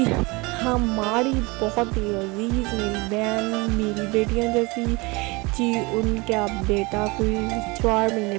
हमारी बहुत ही अजीज़ मेरी बहन, मेरी बेटियाँ जैसी जी, उनका बेटा कोई 4 महीने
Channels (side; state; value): left; quieter; 25.5 dB